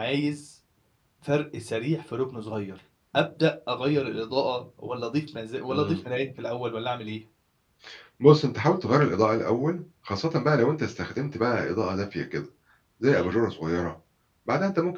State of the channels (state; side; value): identical; both; correlation 1.00